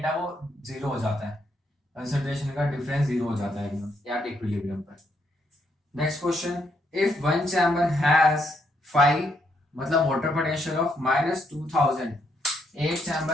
है वो जीरो हो जाता है, कंसंट्रेशन का डिफरेंस जीरो हो जाता है एकदम एट इक्विलिब्रियम पर। Next question, if one chamber has 5 मतलब वाटर पोटेंशियल ऑफ -2000, एक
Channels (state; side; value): normal; both; correlation 0.75